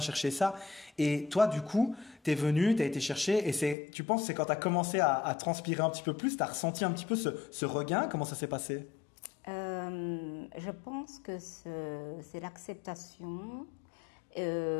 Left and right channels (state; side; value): drops out; right; at 3.8 s